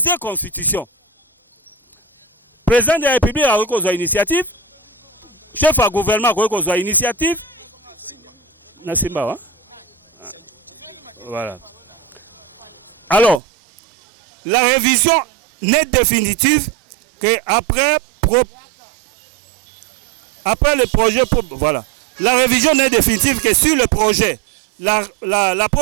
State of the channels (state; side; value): drops out; left; at 13.4 s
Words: constitution. Président de la République a kozwa initiative, chef à gouvernement a kozwa initiative. Nasimba, hein? Voilà. Alors, la révision n'est définitive qu'après le projet. Voilà. La révision n'est définitive que sur le projet. La